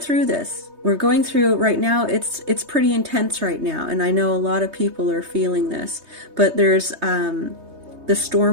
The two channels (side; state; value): left; late; 3.2 ms